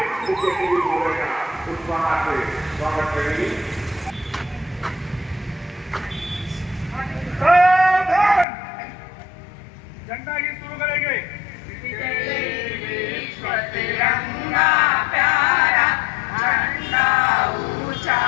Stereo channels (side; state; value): right; drops out; at 8.5 s